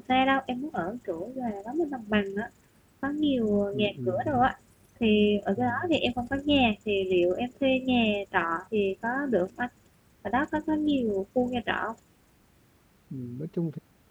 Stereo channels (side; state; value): both; identical; correlation 1.00